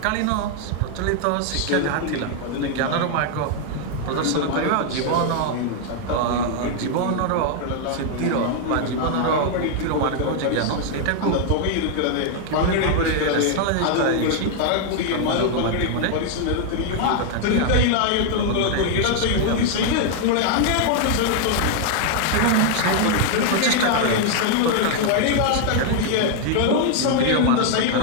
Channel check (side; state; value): both; different; correlation 0.00